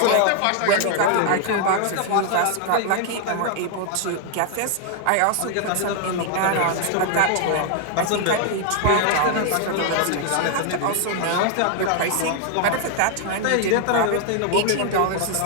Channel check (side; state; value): both; different; correlation 0.00